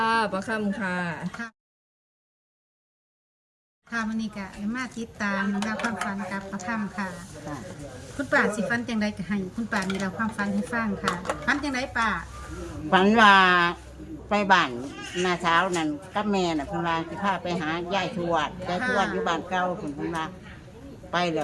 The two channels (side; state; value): both; identical; correlation 1.00